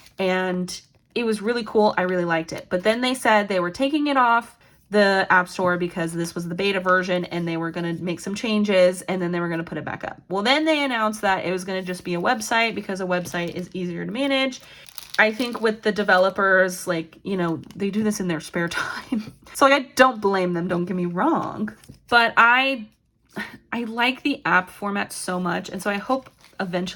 and it was really cool. I really liked it. But then they said they were taking it off the App Store because this was the beta version and they were going to make some changes and then they were going to put it back up. Well, then they announced that it was going to just be a website because a website is easier to manage. I think with the developers, like, you know, they do this in their spare time. So like, I don't blame them, don't get me wrong. But I like the app format so much. And so I hope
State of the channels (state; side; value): identical; both; correlation 1.00